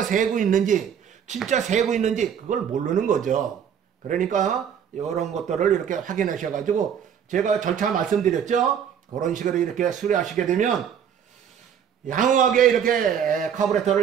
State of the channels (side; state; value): left; quieter; 8.3 dB